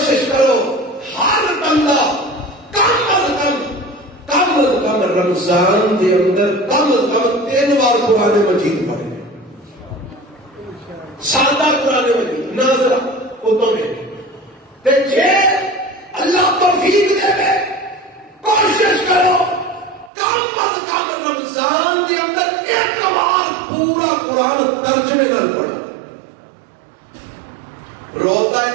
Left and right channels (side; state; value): left; drops out; at 20.1 s